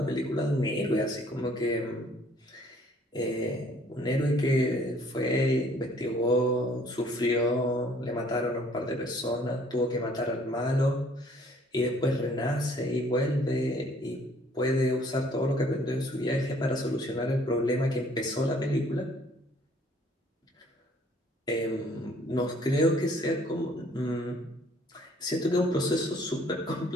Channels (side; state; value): both; normal; correlation 0.59